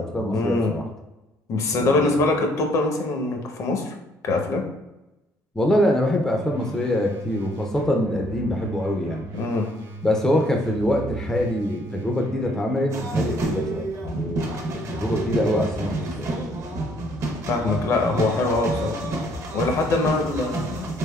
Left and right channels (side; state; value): both; normal; correlation 0.65